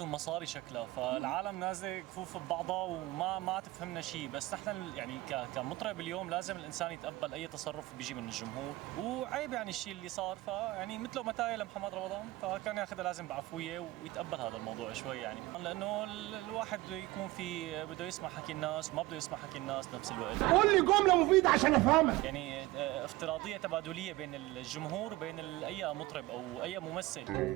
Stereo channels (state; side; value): quieter; left; 18.9 dB